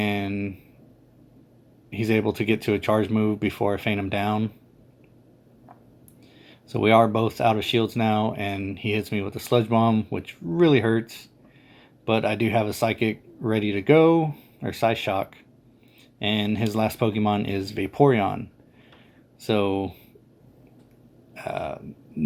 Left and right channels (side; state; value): both; identical; correlation 1.00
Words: he's able to get to a charge move before I feint him down. So we are both out of shields now, and he hits me with a sludge bomb, which really hurts. But I do have a psychic ready to go, or Psyshock. And his last Pokemon is Vaporeon. So,